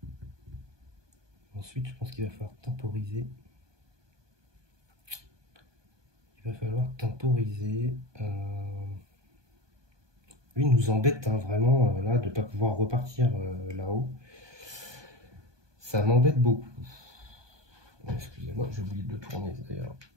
je pense qu'il va falloir temporiser. Lui, il nous embête hein, vraiment là de ne pas pouvoir repartir là-haut. Ça m'embête beaucoup. Excusez-moi, j'ai oublié de tourner d'ailleurs.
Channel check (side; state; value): left; late; 1.2 ms